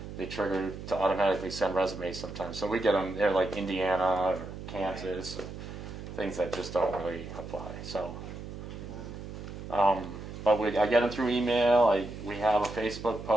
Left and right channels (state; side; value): noise; right; hum, 10 dB below the sound